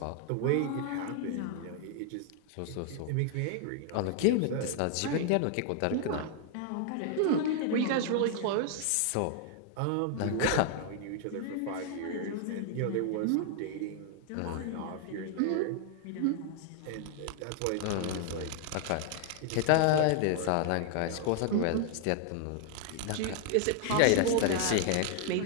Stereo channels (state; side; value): different; both; correlation 0.00